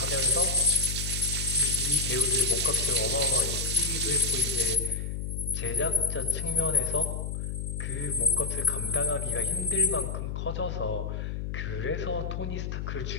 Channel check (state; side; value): noise; left; hum, 4 dB below the sound